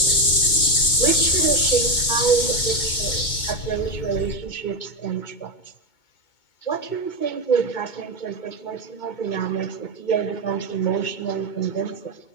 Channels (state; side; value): late; right; 2.2 ms